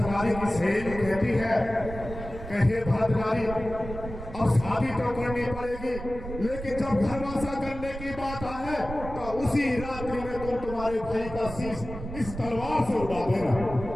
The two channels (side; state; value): right; noise; rumble, 10 dB below the sound